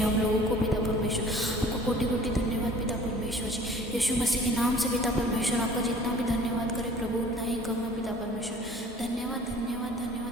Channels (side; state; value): both; normal; correlation 0.49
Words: लोगों को पिता परमेश्वर आपको कोटि कोटि धन्यवाद पिता परमेश्वर जी। यीशु मसीह के नाम से पिता परमेश्वर आपका जितना भी धन्यवाद करे प्रभु उतना ही कम है पिता परमेश्वर। धन्यवाद धन्यवाद